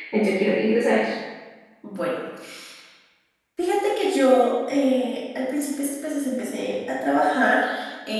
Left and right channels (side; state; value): both; identical; correlation 1.00